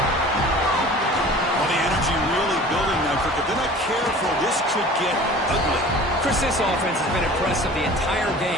Well, the energy really building now, Kirk. If they're not careful, this could get ugly. Chris, this offense has been impressive the entire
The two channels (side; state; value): both; normal; correlation 0.43